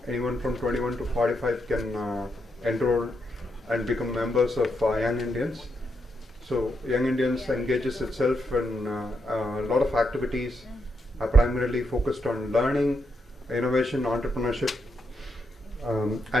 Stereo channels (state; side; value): normal; both; correlation 0.81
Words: anyone from 21 to 45 can enroll and become members of Young Indians. So Young Indians engages itself in a lot of activities, primarily focused on learning, innovation, entrepreneurship,